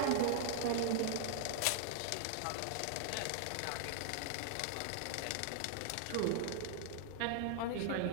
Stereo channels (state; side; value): different; both; correlation 0.00